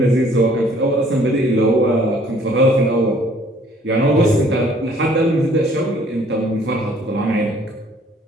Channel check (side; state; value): both; normal; correlation 0.58